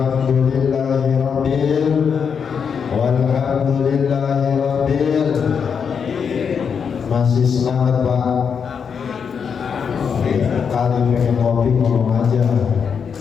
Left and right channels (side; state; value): right; quieter; 6.6 dB